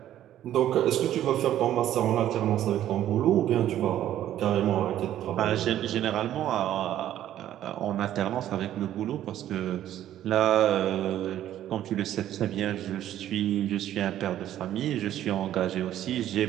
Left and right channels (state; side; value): quieter; left; 12.1 dB